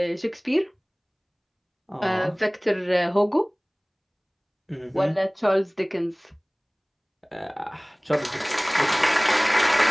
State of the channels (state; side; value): identical; both; correlation 1.00